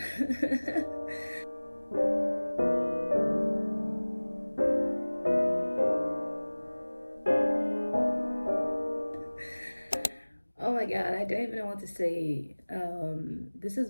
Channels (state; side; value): inverted; both; correlation -1.00